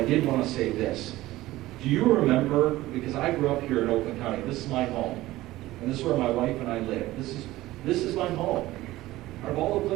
I did want to say this. Do you remember, because I grew up here in Oakland County, this is my home. And this is where my wife and I live. This is my home. Out of all the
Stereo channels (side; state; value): left; quieter; 17.1 dB